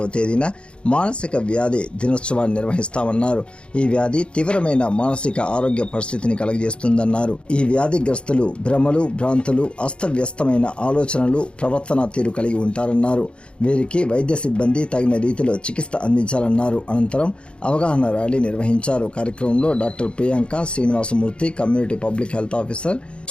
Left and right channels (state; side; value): late; right; 0.056 ms